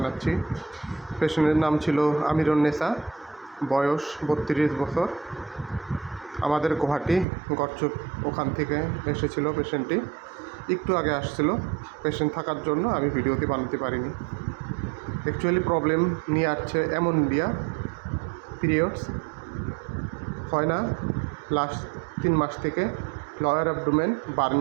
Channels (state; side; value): drops out; left; at 7.2 s